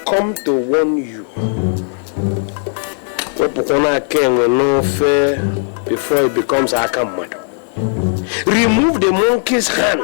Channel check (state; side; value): silent; right; digital silence